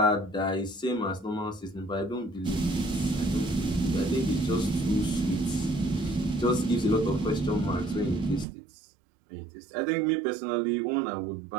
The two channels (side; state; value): left; drops out; at 8.5 s